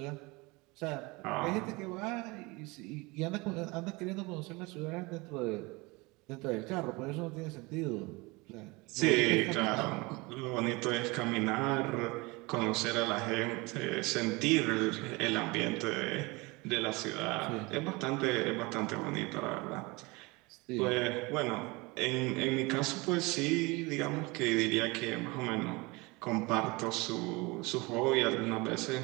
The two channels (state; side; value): quieter; left; 25.0 dB